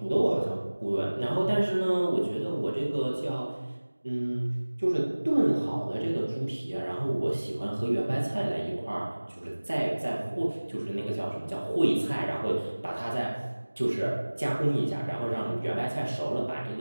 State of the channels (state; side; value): inverted; both; correlation -1.00